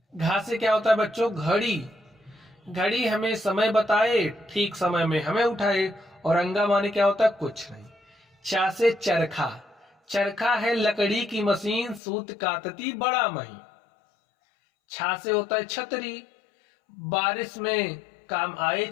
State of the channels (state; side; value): drops out; right; at 12.0 s